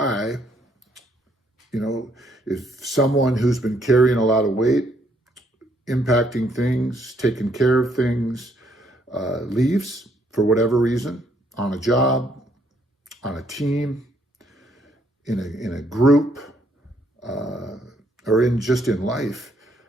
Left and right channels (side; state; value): both; normal; correlation 0.70